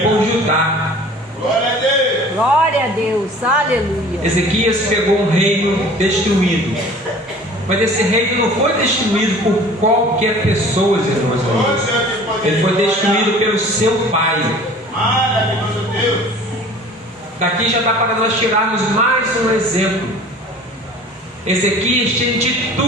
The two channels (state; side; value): normal; both; correlation 0.46